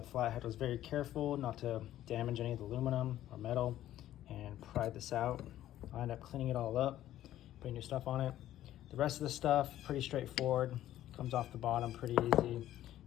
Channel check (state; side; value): quieter; right; 13.0 dB